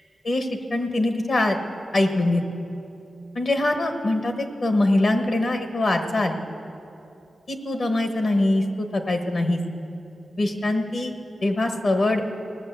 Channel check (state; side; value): normal; both; correlation 0.94